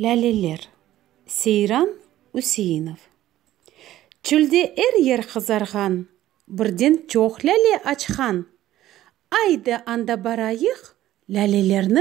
Сейран Үсейінов. Чүлде ер қызарған, бірден чоқ ләле açқан. Айды анда барайық,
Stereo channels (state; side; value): quieter; left; 14.0 dB